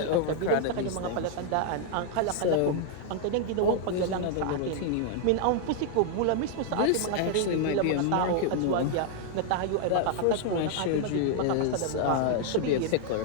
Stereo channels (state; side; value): different; both; correlation 0.00